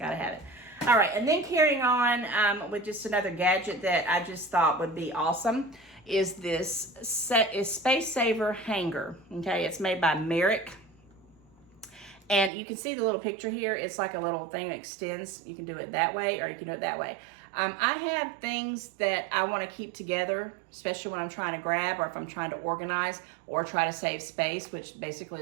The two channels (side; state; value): left; drops out; at 12.5 s